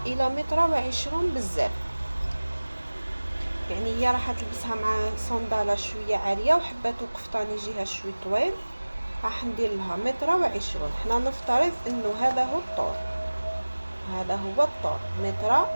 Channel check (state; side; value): inverted; both; correlation -1.00